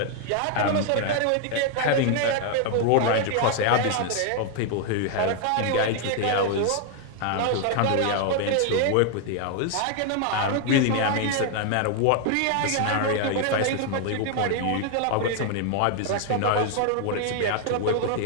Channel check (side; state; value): both; different; correlation 0.00